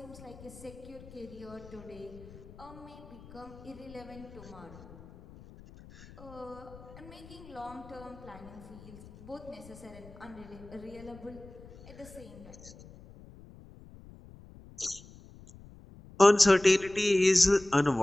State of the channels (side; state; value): left; noise; rumble, 19 dB below the sound